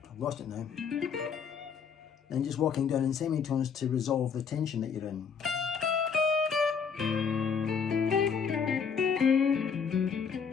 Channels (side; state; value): right; quieter; 6.4 dB